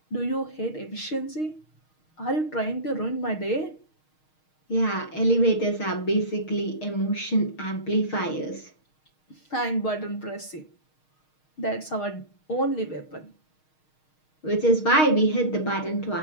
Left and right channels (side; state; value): right; late; 6.4 ms